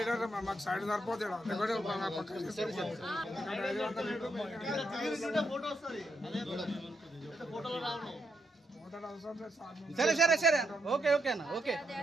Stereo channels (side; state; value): both; normal; correlation 0.80